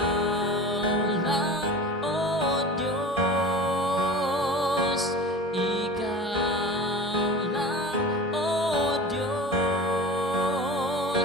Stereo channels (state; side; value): normal; both; correlation 0.35